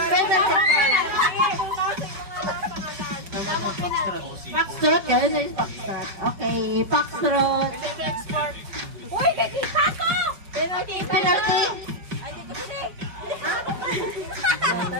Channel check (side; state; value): left; late; 5.2 ms